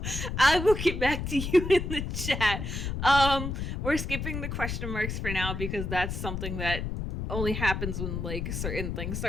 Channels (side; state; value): left; noise; rumble, 4 dB below the sound